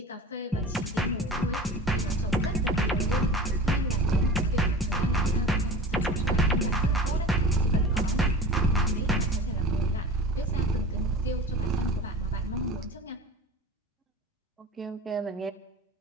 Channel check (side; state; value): both; normal; correlation 0.35